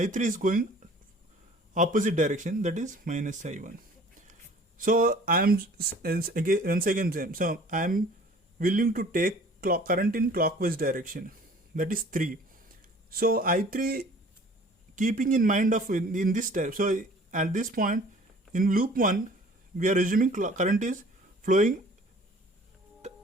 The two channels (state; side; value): normal; both; correlation 0.50